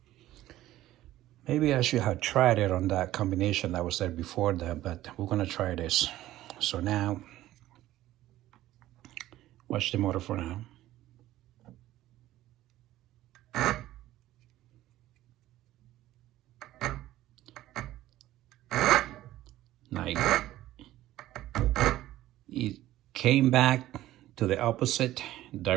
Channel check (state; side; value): quieter; left; 14.8 dB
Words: Maybe I should have tried it on that combination that was there before that, but we're gonna try this. So now, watch the motor for now. Nice. it came back to the opposite